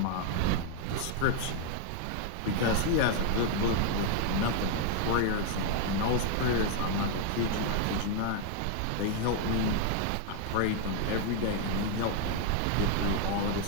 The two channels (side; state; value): both; different; correlation 0.00